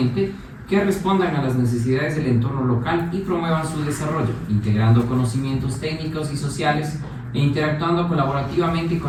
que respondan a las necesidades del entorno local y promuevan su desarrollo, integrando conocimientos técnicos y sociales e interactuando colaborativamente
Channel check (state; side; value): identical; both; correlation 1.00